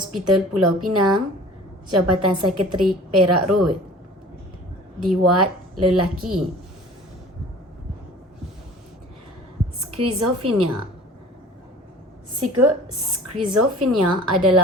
Pulau Pinang, Jabatan Psikiatrik Perak Road, di ward lelaki. Skizofrenia. Skizofrenia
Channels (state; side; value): normal; both; correlation 0.44